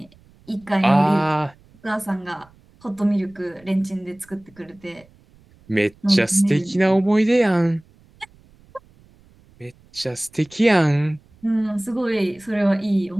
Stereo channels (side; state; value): right; noise; rumble, 29 dB below the sound